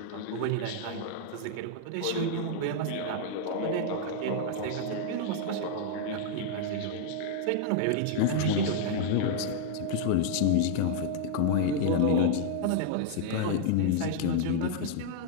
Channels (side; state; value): both; different; correlation -0.01